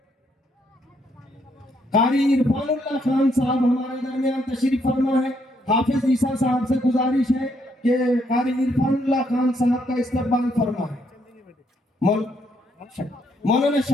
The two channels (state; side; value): normal; both; correlation 0.73